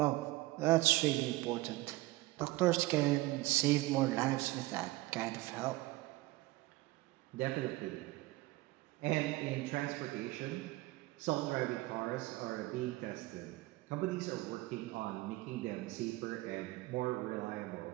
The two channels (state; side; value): quieter; left; 19.7 dB